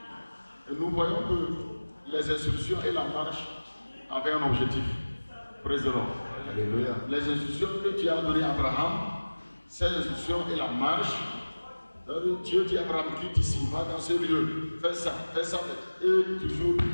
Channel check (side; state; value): both; inverted; correlation -1.00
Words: Et nous voyons que les instructions et la marche avaient un objectif. Praise the Lord. Alléluia. Les instructions que Dieu a données à Abraham, ces instructions et la marche, Dieu dit à Abraham, quitte ici, va dans ce lieu, fais ça, et toujours